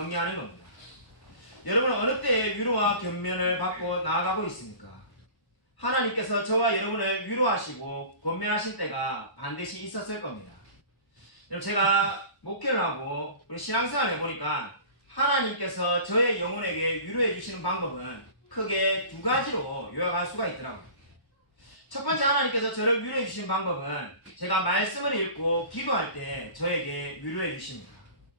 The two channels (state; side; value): late; right; 1.0 ms